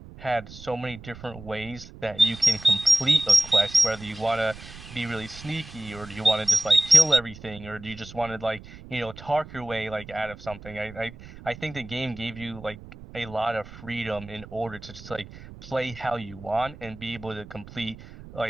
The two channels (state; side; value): noise; right; rumble, 17 dB below the sound